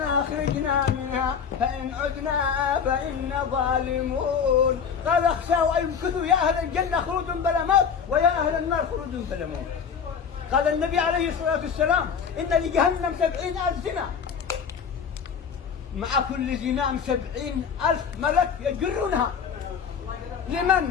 أخرجنا منها فإن عدنا فإنا ظالمون. قال اخشوا أن يمكثوا يا أهل الجنة خلود بلا موت ويا أهل النار خلود بلا موت. قال النبي عليه الصلاة والسلام إن لجهنم 70,000 زنا، مع كل زنام 70,000 ملك يجرونها.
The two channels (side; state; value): right; quieter; 6.9 dB